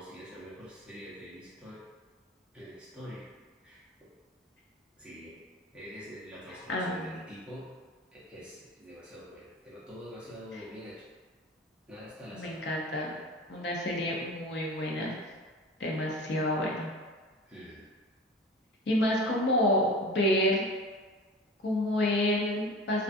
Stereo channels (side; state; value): both; normal; correlation 0.37